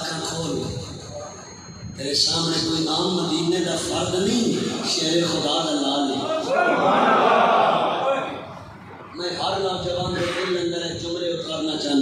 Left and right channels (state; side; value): identical; both; correlation 1.00